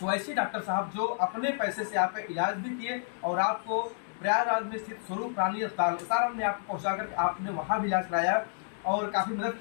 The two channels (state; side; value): silent; right; digital silence